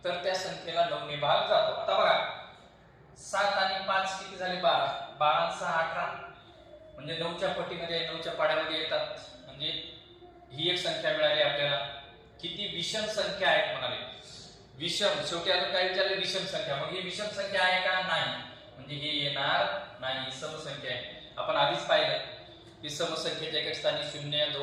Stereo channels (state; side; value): identical; both; correlation 1.00